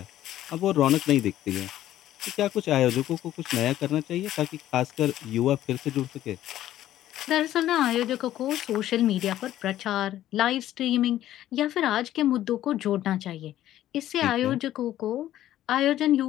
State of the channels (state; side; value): quieter; right; 13.1 dB